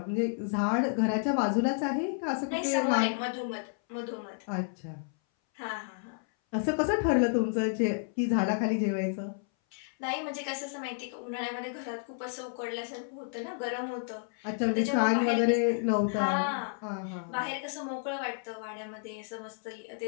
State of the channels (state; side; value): silent; right; 57 dB below the other